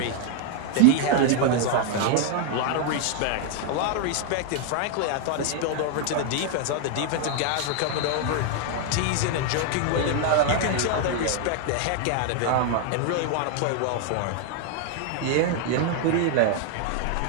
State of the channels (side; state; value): both; different; correlation 0.00